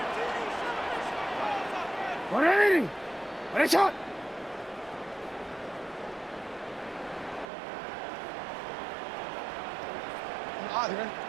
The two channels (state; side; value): drops out; left; at 7.5 s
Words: 180. Finish it.